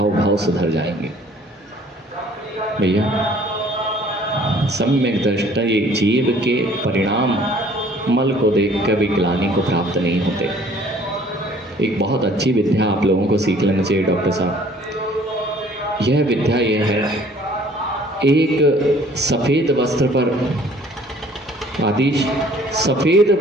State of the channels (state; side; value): normal; both; correlation 0.55